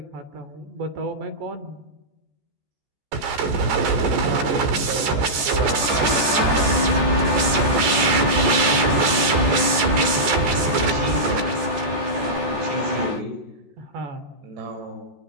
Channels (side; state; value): left; late; 14 ms